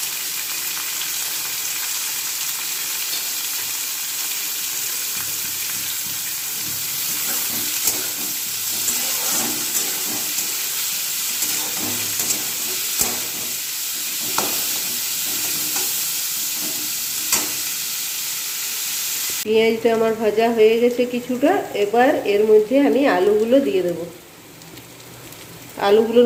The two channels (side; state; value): both; identical; correlation 1.00